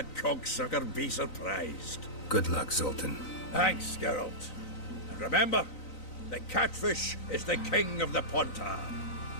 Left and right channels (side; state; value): right; late; 3.9 ms